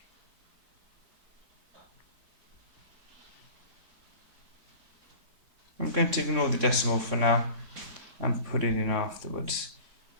I'm going to ignore the decimal for now and put it in afterwards.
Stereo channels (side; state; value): left; late; 3.6 ms